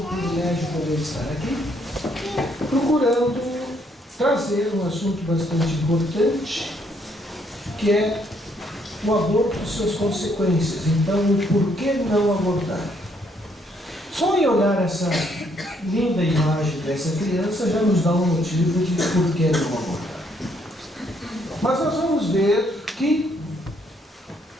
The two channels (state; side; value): normal; both; correlation 0.70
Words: privilégio poder estar aqui, procurando trazer um assunto bastante importante, que é o aborto e suas consequências. Então, o porquê não abortar? Só em olhar essa linda imagem dessa criança já nos dá um motivo de por que não abortar. Mas nós vamos ver que